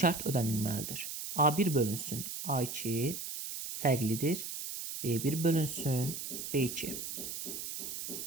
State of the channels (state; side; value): noise; right; hiss, 6 dB below the sound